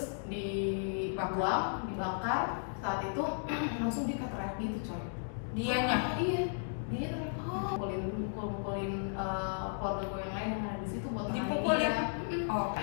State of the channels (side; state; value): right; silent; digital silence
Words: dibuang, dibakar. Saat itu langsung dia kayak teriak gitu coy. Dianya? Iya, dia teriak, mukulin keluarga gue yang lain yang ada di situ buat dipukulin.